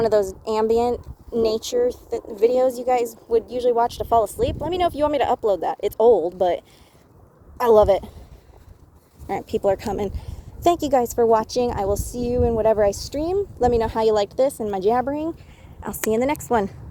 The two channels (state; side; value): identical; both; correlation 1.00